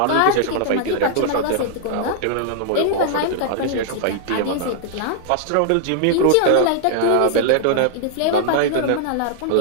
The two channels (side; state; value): both; different; correlation -0.01